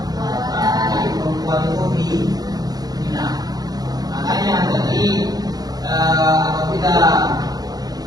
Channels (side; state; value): left; late; 0.19 ms